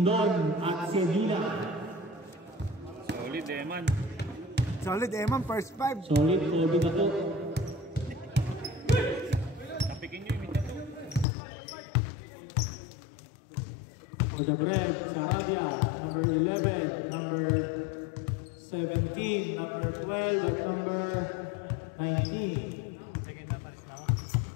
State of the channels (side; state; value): right; drops out; at 11.2 s